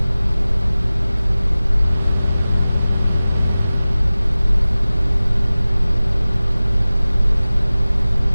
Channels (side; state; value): both; inverted; correlation -0.98